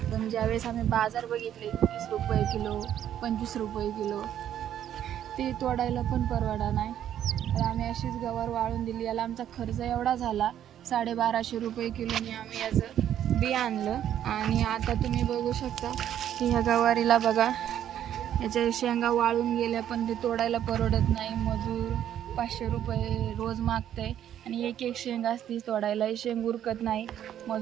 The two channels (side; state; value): left; quieter; 10.6 dB